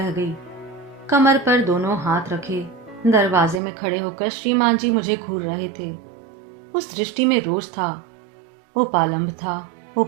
गई। कमर पर दोनों हाथ रखे दरवाजे में खड़े होकर श्रीमान जी मुझे घूर रहे थे। उस दृष्टि में रोष था, उपालंब था,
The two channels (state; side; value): drops out; left; at 3.6 s